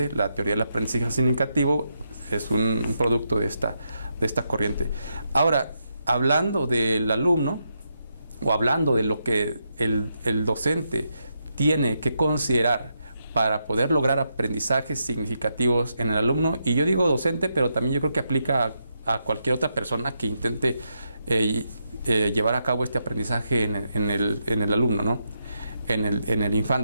la teoría del aprendizaje significativo es un producto de esta corriente. Ahora, hablando del alumno, o hablando de lo que el docente tiene que considerar para poder lograr aprendizajes significativos en el alumno, y yo digo docente, pero también yo creo que aplica a cualquier otra persona que intente llevar a cabo este aprendizaje en el alumno, ¿no? En el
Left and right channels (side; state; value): both; inverted; correlation -0.83